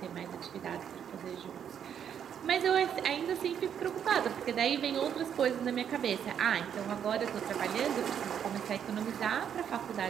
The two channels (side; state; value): left; quieter; 8.6 dB